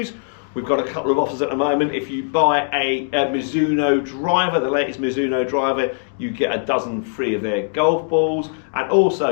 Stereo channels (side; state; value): right; silent; digital silence